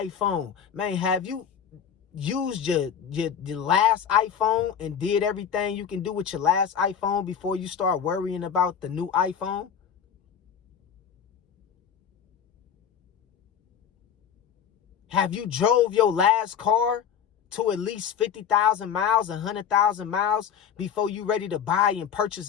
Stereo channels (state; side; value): quieter; right; 8.1 dB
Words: Man, have you used your last iPhone and did everything you can do with your last iPhone before you start worrying about the new iPhone? Have you drove your last car to at least 50,000 miles, 100,000 miles before you ready to buy and purchase